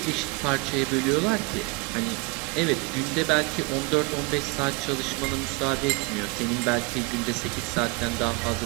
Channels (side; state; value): left; quieter; 27.6 dB